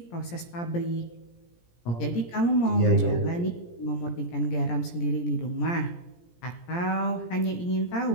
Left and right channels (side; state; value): right; late; 17 ms